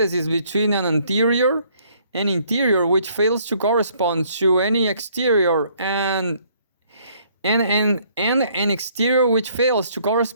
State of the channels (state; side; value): inverted; both; correlation -0.64